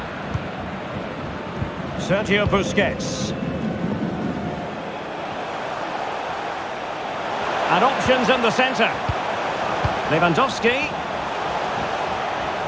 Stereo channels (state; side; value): identical; both; correlation 1.00